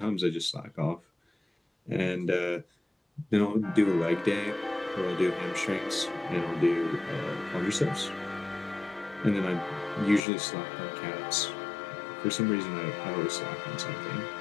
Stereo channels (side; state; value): right; drops out; at 10.2 s